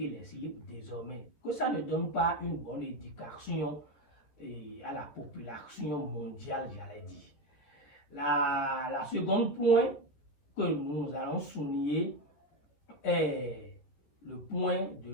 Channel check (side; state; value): right; late; 14 ms